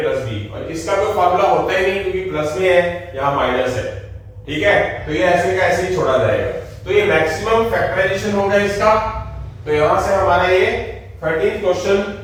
प्लस b, और इसका कोई फॉर्मूला होता ही नहीं क्योंकि प्लस में है, यहाँ माइनस है, ठीक है, तो ये ऐसे का ऐसे ही छोड़ा जाएगा, तो ये मैक्सिमम फैक्टराइजेशन होगा इसका, तो यहां से हमारा ये 13th क्वेश्चन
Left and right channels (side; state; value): both; identical; correlation 1.00